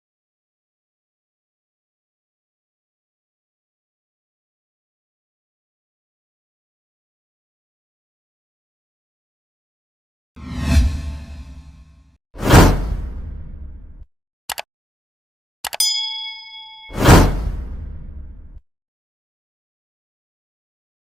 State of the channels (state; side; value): normal; both; correlation 0.85